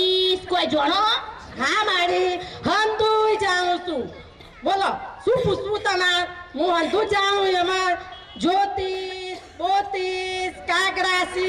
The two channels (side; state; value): both; identical; correlation 1.00